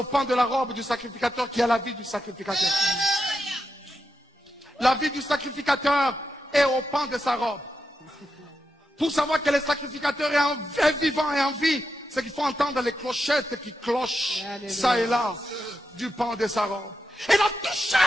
pan de la robe du sacrificateur qui a la vie du sacrificateur. La vie du sacrificateur est au pan de sa robe. Pour savoir que le sacrificateur est vivant et en vie, c'est qu'il faut entendre les clochettes qui clochent ça et là du pan de sa robe. Il a touché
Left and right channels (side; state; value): both; normal; correlation 0.86